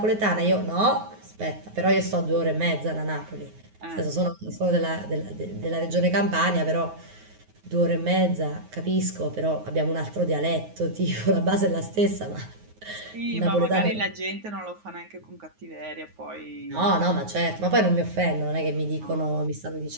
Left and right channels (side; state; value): left; late; 9.5 ms